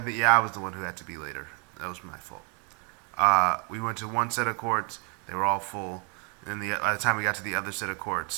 think I was the one who had to be later. That was my fault. We went to one set of courts; they were all full. And then by the time we got to the other set of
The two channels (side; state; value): left; quieter; 36.1 dB